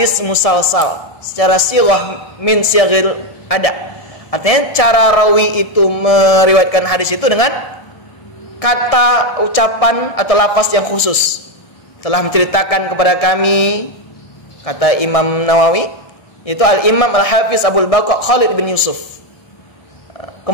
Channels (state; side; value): late; right; 1.6 ms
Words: musalsal secara sirah min syaghil ada. Artinya cara rawi itu meriwayatkan hadis itu dengan kata, ucapan atau lafaz yang khusus. Telah menceritakan kepada kami, kata Imam Nawawi, itu Al-Imam Al-Hafiz Abul Baqa Khalid bin Yusuf.